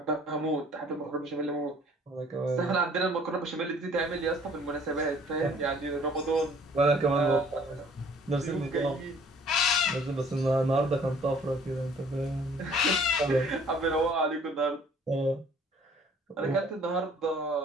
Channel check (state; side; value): normal; both; correlation 0.56